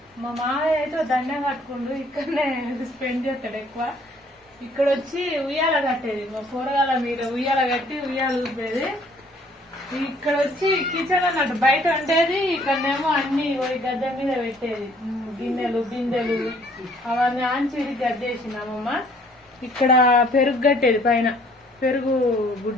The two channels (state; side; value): normal; both; correlation 0.60